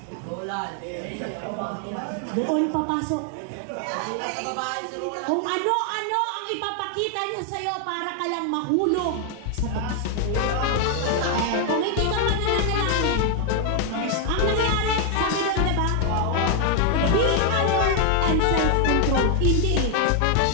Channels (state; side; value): different; both; correlation 0.00